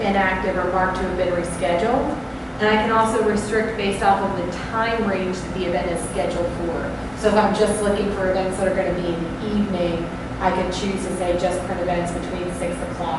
or marked to have been rescheduled. And I can also restrict based off of the time range that the event is scheduled for. So if I'm just looking for events that are going to be in the evening, I can choose to say just print events between 6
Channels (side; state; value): both; identical; correlation 1.00